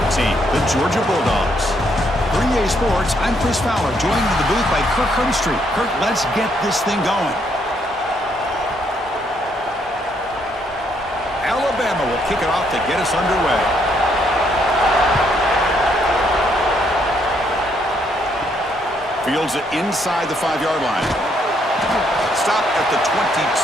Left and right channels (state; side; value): normal; both; correlation 0.72